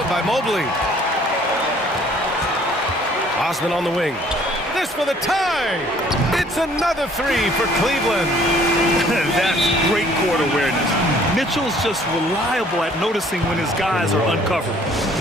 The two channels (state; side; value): normal; both; correlation 0.58